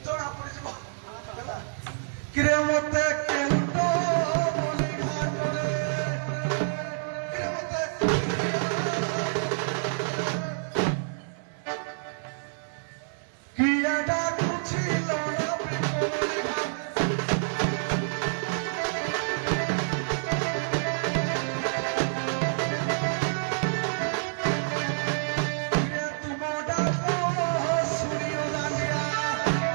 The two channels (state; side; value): silent; left; 57 dB below the other